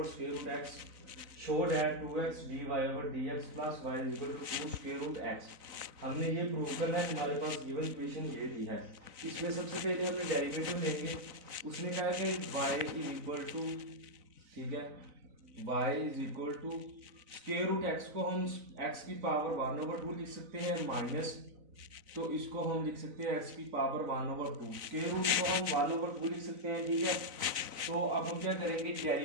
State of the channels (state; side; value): late; left; 3.9 ms